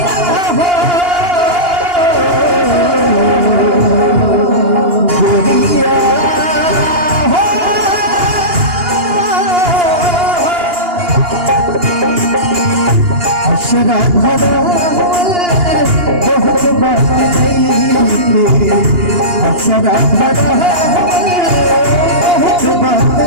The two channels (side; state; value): left; late; 2.8 ms